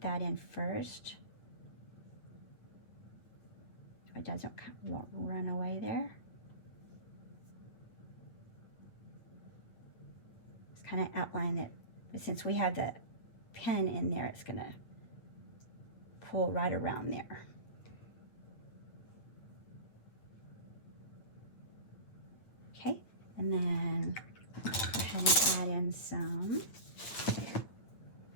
that in first. So it doesn't run away there. Just kind of outline it, but since we have the pen in there, it's going to pull right around there. Okay, and then go ahead and add in some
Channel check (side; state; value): right; late; 8.9 ms